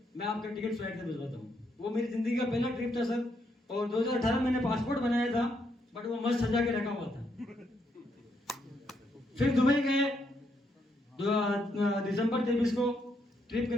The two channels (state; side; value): normal; both; correlation 0.76